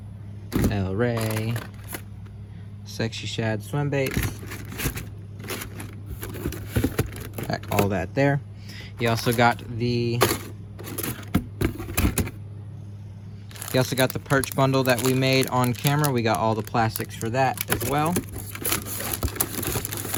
El Rey, Sexy Shad swim baits. Pack all that there. He also got the perch bundle that we made on camera. We got all the plastics for that as well.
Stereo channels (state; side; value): identical; both; correlation 1.00